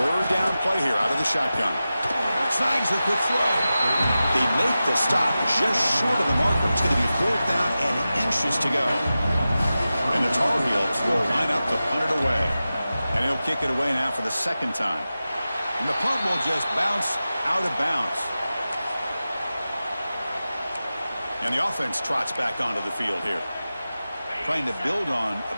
down play here out of the shotgun. Snags a quick throw. They make the stop just short of the marker. It's going to be 4th down and inches to go. And the Tar Heels will line up to punt it away. And he'll kick it away now for the 2nd time. And the punt will just bounce out of bounds. And the offense trots back onto the field here. Trying to build on a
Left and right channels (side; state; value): both; inverted; correlation -0.94